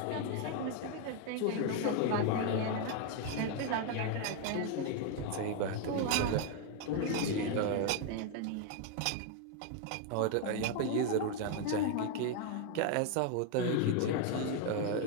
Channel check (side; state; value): both; different; correlation 0.00